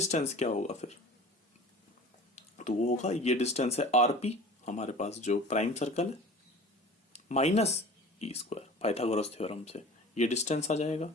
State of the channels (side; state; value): both; normal; correlation 0.41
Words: क्या होगा फिर, तो वो होगा, ये डिस्टेंस है आरपी हमारे पास जो प्राइम सर्कल है, minus E square Pythagoras theorem से ये डिस्टेंस आ जाएगा।